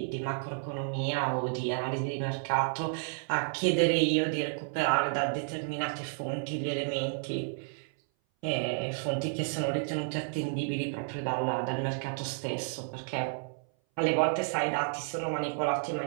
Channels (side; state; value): left; silent; 57 dB below the other